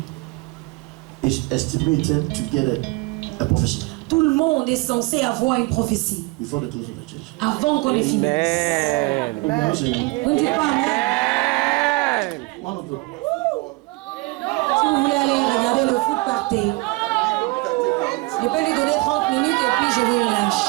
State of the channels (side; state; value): left; quieter; 24.5 dB